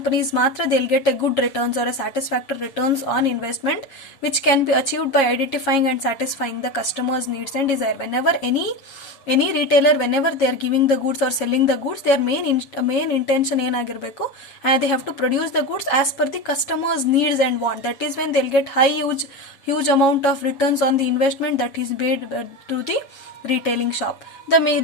matra they'll get a good returns or a satisfactory returns on investment, which can be achieved by identifying and satisfying the customers' needs and desire. Whenever any retailer, whenever they are giving the goods or selling the goods, their main intention ಏನಾಗಿರಬೇಕು, they have to produce the goods as per the customer's needs and want. That is when they'll get huge amount of returns on the investment that is made to the retailing shop. The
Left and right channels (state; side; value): late; right; 7.3 ms